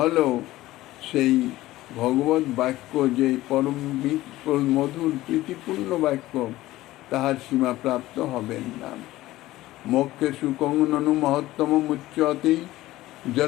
সেই ভগবত বাক্য যে পরম মধুর প্রীতিপূর্ণ বাক্য, তাহার সীমা প্রাপ্ত হবেন না। মোক্ষে সুকং ননু মহত্তম মুচ্যতে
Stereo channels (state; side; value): quieter; right; 16.6 dB